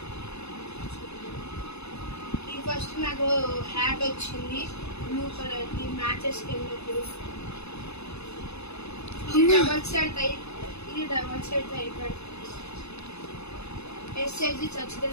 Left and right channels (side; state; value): right; late; 0.80 ms